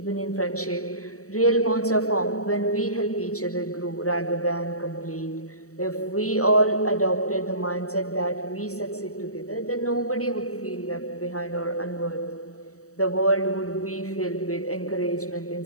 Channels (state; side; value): late; right; 0.65 ms